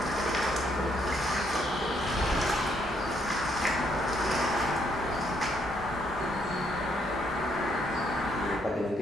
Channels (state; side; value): normal; both; correlation 0.72